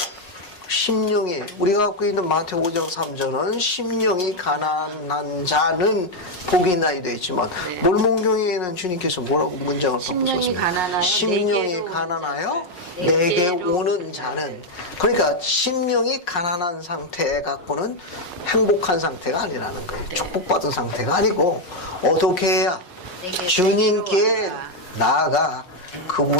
심령이, 우리가 갖고 있는 마태 5장 3절은 심령이 가난한 자는 복이 있나이 되어 있지만, 네. 몰문경에는 주님께서 뭐라고 문장을 심령이 바꾸셨습니까? 가난하여 심령이 내게로 가난하여 내게로 내게 오는 자는. 그러니까 심령이 가난한 상태 갖고는 행복한 상태가 아니라는 거예요. 네. 축복받은 상태가 아니고, 어떻게 해야 내게 주님께 와라. 나아가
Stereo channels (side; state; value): right; late; 5.5 ms